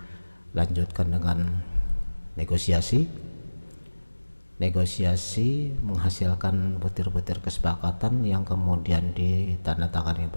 dengan negosiasi. Negosiasi menghasilkan butir-butir kesepakatan yang kemudian ditandatangani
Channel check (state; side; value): inverted; both; correlation -1.00